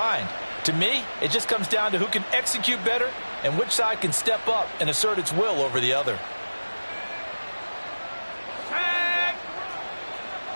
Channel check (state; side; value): inverted; both; correlation -1.00